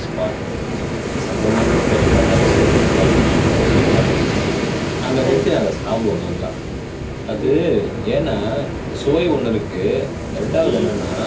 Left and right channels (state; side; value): identical; both; correlation 1.00